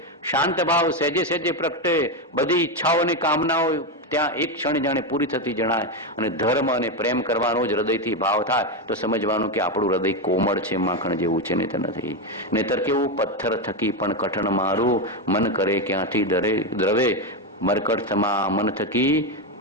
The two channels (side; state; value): both; normal; correlation 0.10